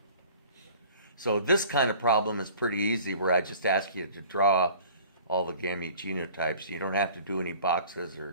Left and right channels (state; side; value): inverted; both; correlation -0.47